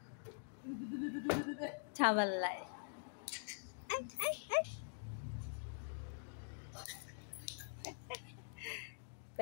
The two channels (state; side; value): silent; right; digital silence